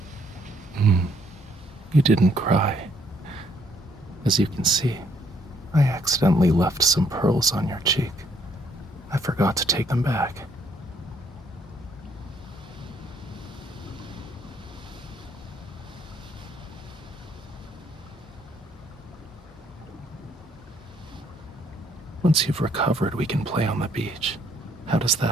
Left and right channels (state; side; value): normal; both; correlation 0.67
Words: You didn't cry. As you can see, I accidentally left some pearls on your cheek. I forgot to take them back. Once you've recovered, we can play on the beach. How does